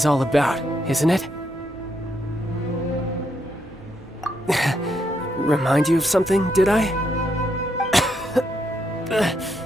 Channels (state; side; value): normal; both; correlation 0.78